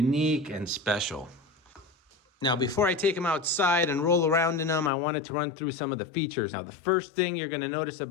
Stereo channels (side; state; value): right; drops out; at 4.9 s